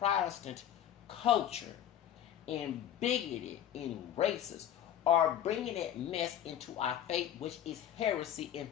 culture and bigoted and racist are bringing that mess into our faith, which is heresy and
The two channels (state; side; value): quieter; right; 10.6 dB